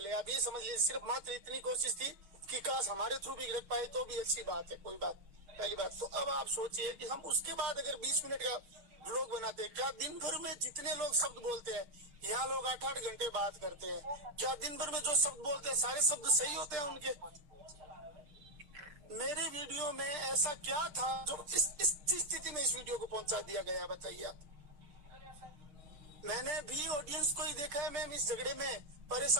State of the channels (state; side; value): late; left; 6.3 ms